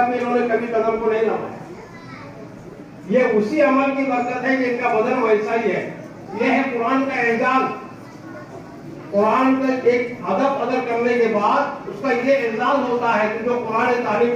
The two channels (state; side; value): identical; both; correlation 1.00